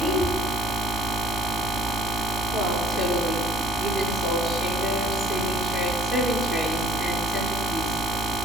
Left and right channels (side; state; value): both; normal; correlation 0.53